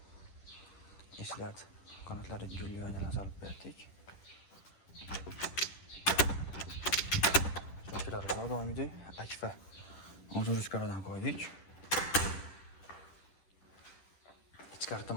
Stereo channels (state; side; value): late; right; 11 ms